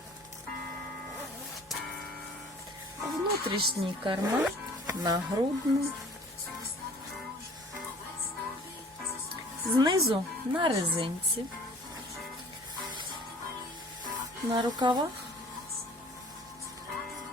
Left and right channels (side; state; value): both; normal; correlation 0.50